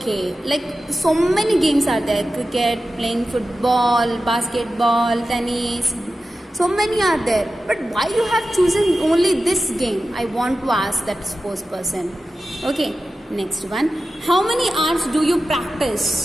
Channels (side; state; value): both; normal; correlation 0.93